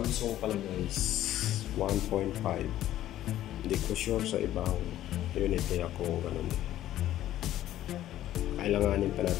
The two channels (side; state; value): right; quieter; 13.1 dB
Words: pala guys 1.5. Hindi ko sure sa ibang unit nila kung ganun. Kailanganin pa